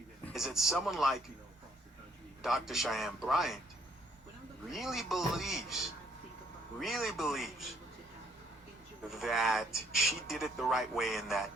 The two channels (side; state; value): both; normal; correlation 0.66